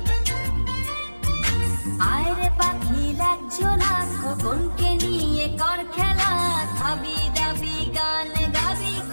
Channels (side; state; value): both; inverted; correlation -1.00